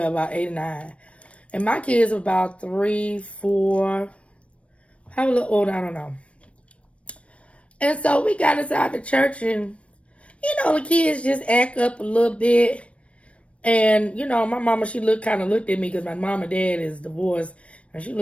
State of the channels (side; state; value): right; late; 0.062 ms